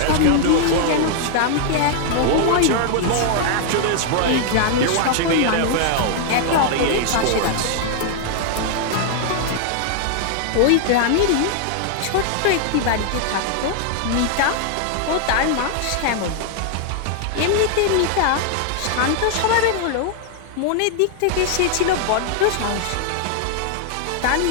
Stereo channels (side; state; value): both; different; correlation 0.00